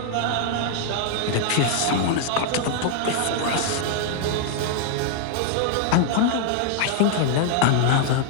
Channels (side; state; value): both; different; correlation 0.00